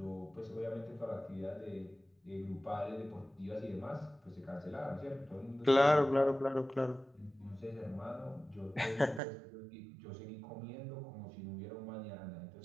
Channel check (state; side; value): drops out; left; at 9.2 s